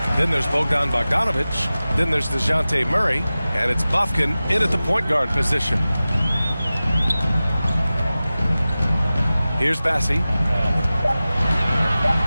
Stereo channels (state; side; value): inverted; both; correlation -0.96